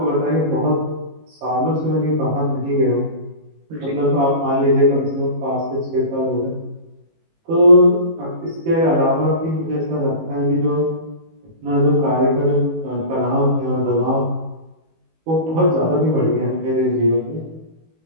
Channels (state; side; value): late; left; 18 ms